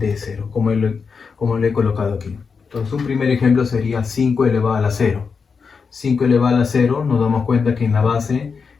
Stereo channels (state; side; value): quieter; right; 5.4 dB